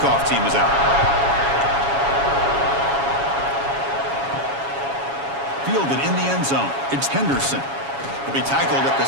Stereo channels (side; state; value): left; late; 7.2 ms